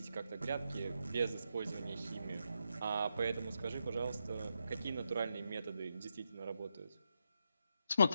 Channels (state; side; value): inverted; both; correlation -0.83